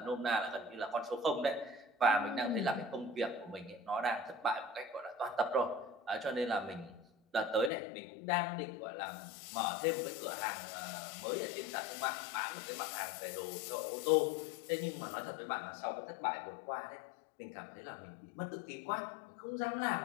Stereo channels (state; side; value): drops out; right; at 7.7 s